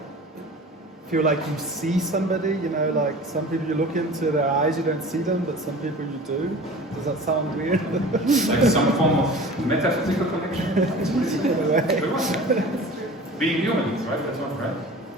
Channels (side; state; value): both; normal; correlation 0.40